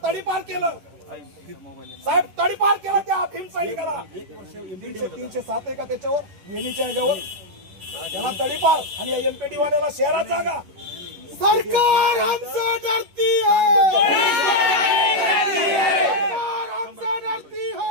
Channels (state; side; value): late; left; 11 ms